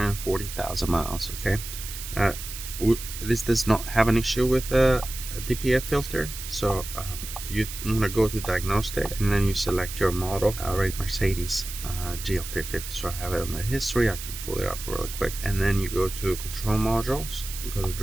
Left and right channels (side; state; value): right; noise; hiss, 9 dB below the sound